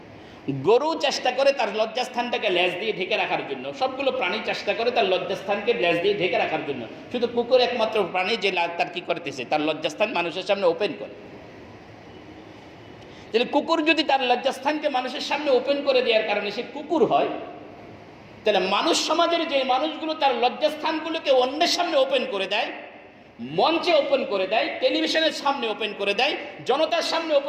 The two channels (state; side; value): identical; both; correlation 1.00